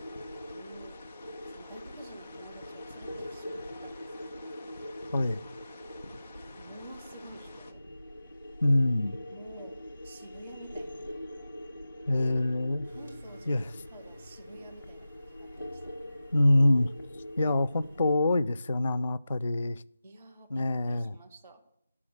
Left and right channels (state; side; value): inverted; both; correlation -0.94